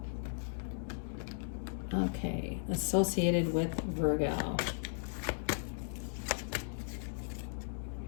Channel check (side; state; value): right; silent; digital silence